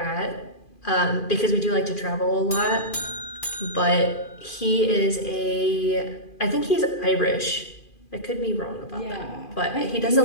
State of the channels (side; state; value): right; late; 2.4 ms